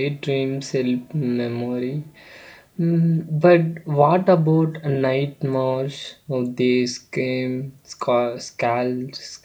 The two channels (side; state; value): both; identical; correlation 1.00